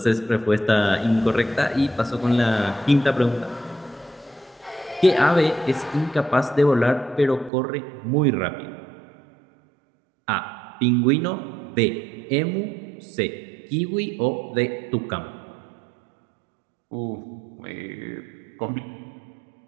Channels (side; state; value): left; drops out; at 7.5 s